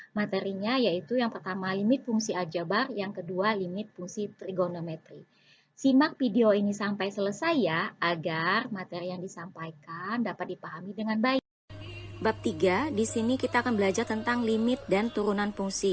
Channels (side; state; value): both; identical; correlation 1.00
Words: Materinya yaitu yang pertama limit fungsi aljabar, yang kedua limit fungsi trigonometri. Simak video ini sampai selesai ya, agar materi yang disampaikan dapat dipahami dengan baik. Bab 3, di sini kita akan belajar tentang limit dan turunan